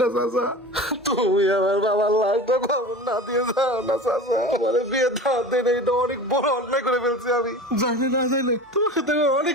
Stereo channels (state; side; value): normal; both; correlation 0.34